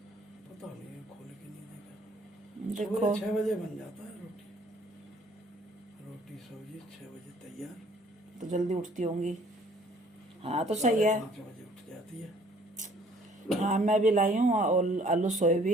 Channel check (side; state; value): both; normal; correlation 0.58